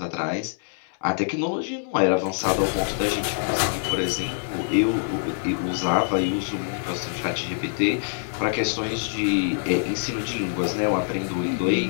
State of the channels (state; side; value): silent; right; digital silence